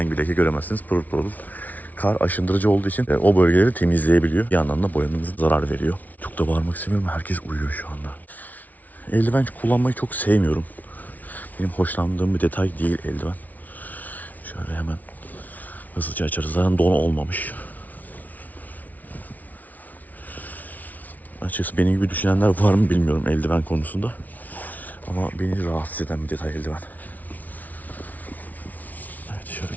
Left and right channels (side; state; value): right; late; 0.076 ms